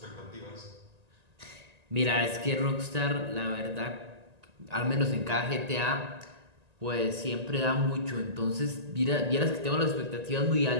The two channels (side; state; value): left; late; 1.8 ms